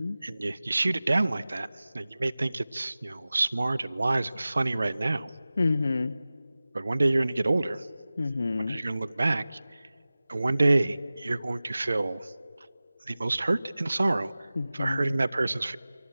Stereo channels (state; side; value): inverted; both; correlation -0.97